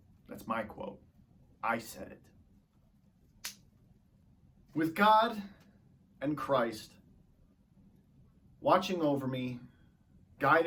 That's my quote. I said it. With God and Christ watching over me,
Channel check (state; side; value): identical; both; correlation 1.00